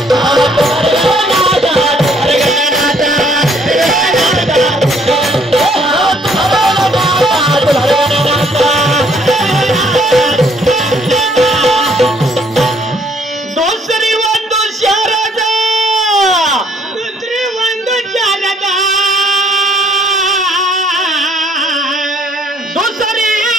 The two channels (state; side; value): normal; both; correlation 0.64